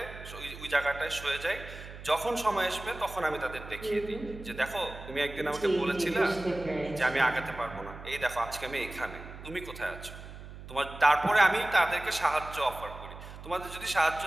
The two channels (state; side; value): noise; right; hum, 14 dB below the sound